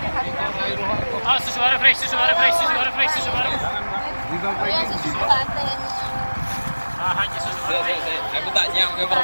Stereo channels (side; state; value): both; inverted; correlation -1.00